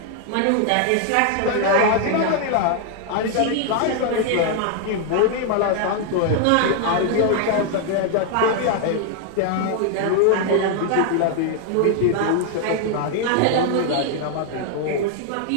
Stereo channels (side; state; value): both; different; correlation 0.00